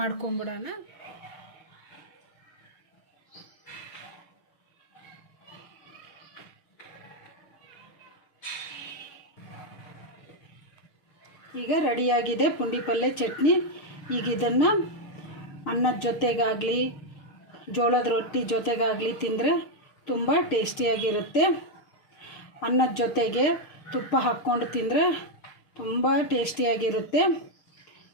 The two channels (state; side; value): late; right; 6.6 ms